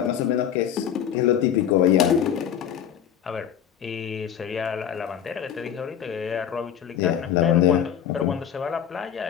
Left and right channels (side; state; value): right; quieter; 9.3 dB